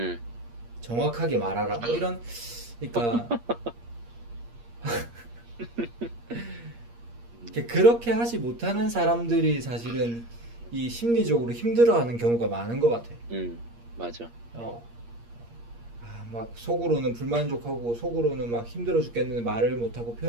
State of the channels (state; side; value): late; left; 8.5 ms